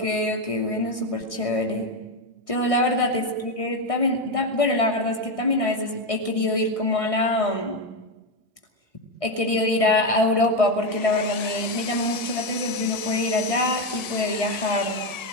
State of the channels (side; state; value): right; late; 1.6 ms